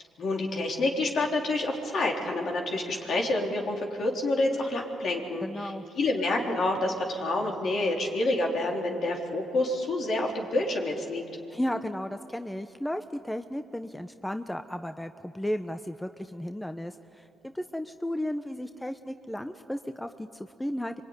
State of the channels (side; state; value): both; normal; correlation 0.82